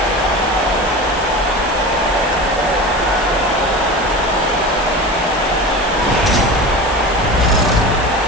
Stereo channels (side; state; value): right; noise; hiss, 16 dB below the sound